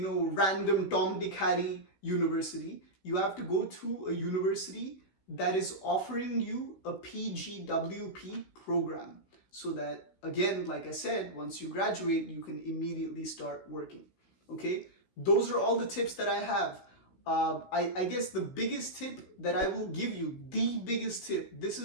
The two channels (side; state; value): right; late; 16 ms